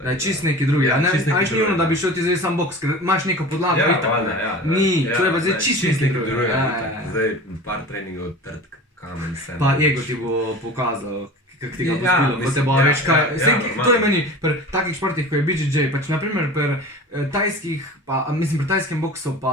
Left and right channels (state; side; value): normal; both; correlation 0.36